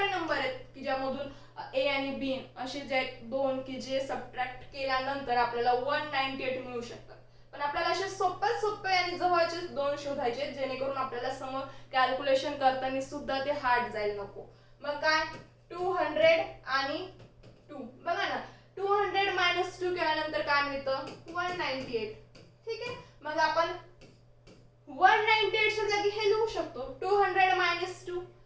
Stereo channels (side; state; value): both; identical; correlation 1.00